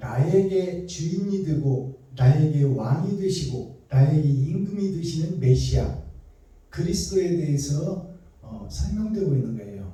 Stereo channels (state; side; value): identical; both; correlation 1.00